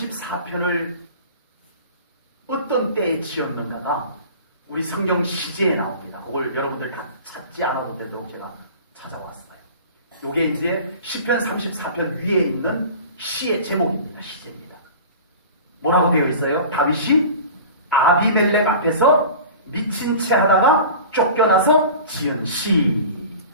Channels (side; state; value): both; inverted; correlation -0.39